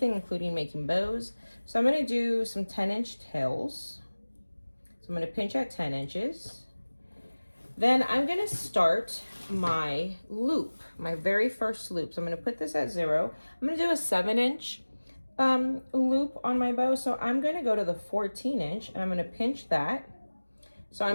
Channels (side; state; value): both; inverted; correlation -1.00